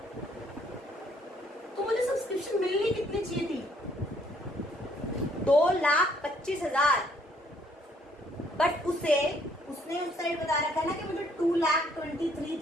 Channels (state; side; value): normal; both; correlation 0.66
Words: तो मुझे सब्सक्रिप्शन मिलनी कितनी चाहिए थी, 2,25,000। बट उसने उस साइड बता रखा है ना कि मुझे